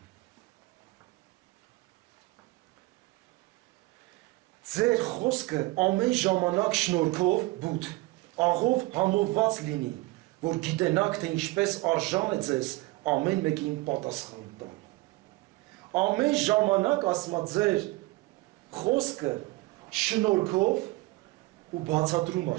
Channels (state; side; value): quieter; left; 21.4 dB